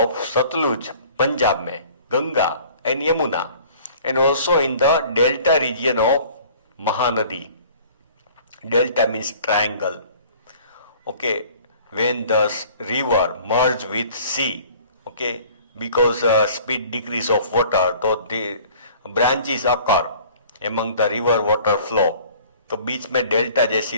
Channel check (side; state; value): both; inverted; correlation -0.50